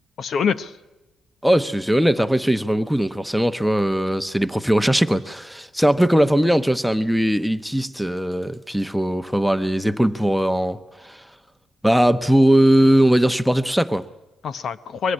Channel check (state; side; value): normal; both; correlation 0.97